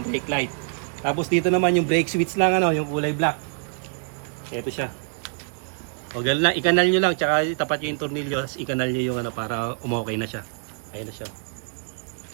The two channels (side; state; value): left; silent; 62 dB below the other